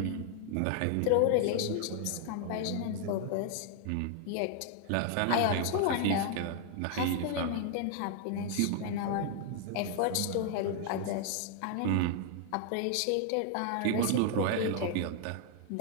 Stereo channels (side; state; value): both; different; correlation 0.00